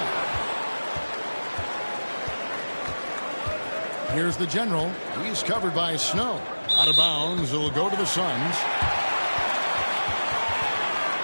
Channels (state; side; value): inverted; both; correlation -1.00